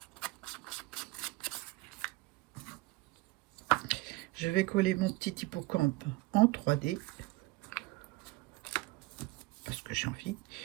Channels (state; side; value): quieter; left; 21.2 dB